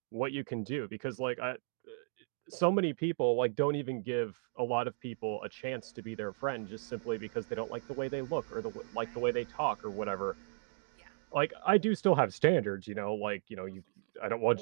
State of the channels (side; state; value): left; silent; digital silence